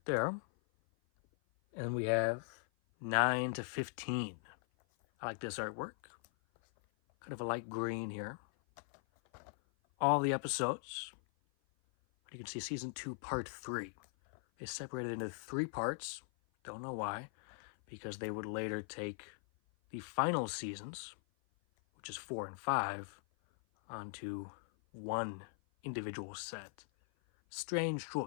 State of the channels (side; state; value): right; silent; 51 dB below the other